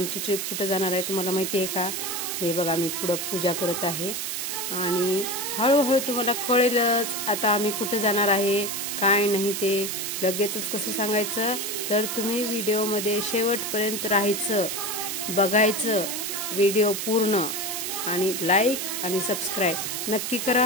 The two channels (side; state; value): right; noise; hiss, 3 dB below the sound